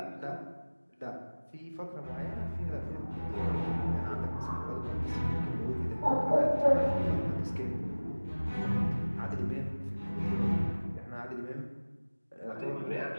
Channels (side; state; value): both; inverted; correlation -1.00